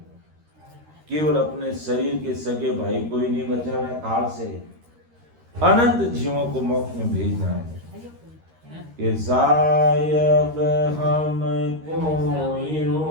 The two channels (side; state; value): left; late; 13 ms